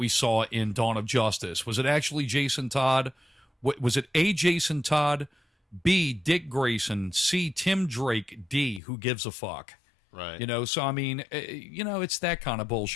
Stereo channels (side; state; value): right; drops out; at 8.8 s